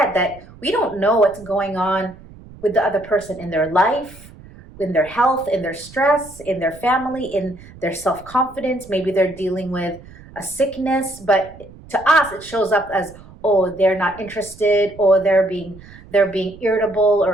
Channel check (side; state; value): right; noise; rumble, 20 dB below the sound